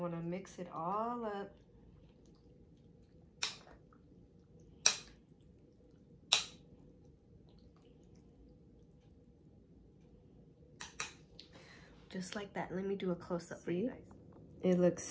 to mix it all up. Just like that. Let me do a close-up for you. It looks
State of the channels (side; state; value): both; identical; correlation 1.00